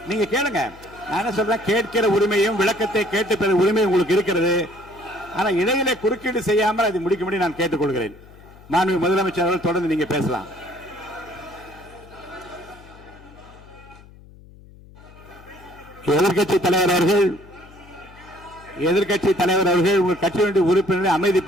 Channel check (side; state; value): left; noise; hum, 22 dB below the sound